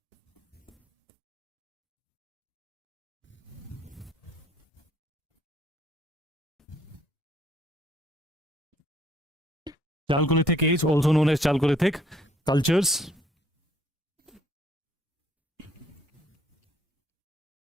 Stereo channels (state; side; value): normal; both; correlation 0.64